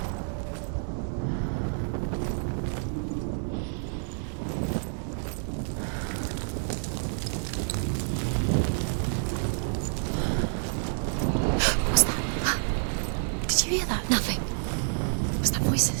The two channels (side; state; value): left; silent; digital silence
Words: What's that? Did you hear that? Nothing. Was that